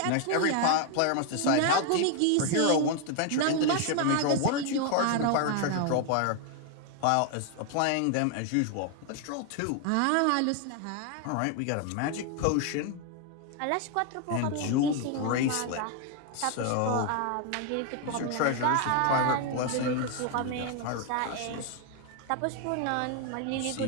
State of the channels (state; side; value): different; both; correlation 0.00